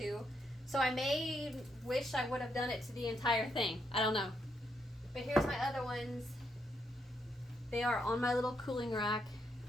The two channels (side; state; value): both; normal; correlation 0.78